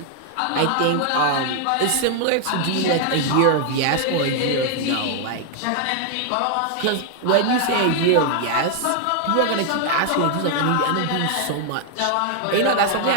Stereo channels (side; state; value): both; different; correlation 0.00